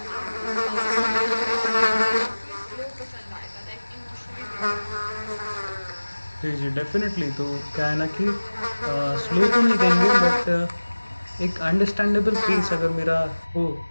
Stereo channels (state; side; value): inverted; both; correlation -1.00